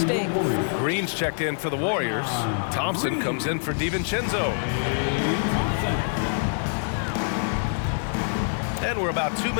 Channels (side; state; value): right; silent; digital silence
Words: Green's checked in for the Warriors. Thompson comes in for DiVincenzo. And we're about 2